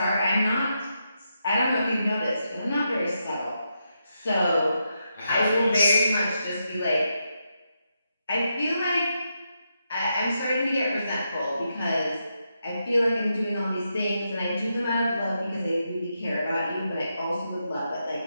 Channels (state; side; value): inverted; both; correlation -0.84